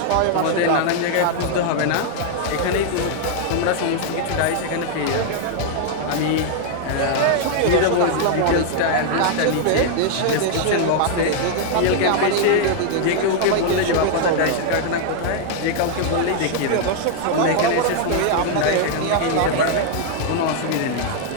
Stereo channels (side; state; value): both; different; correlation 0.00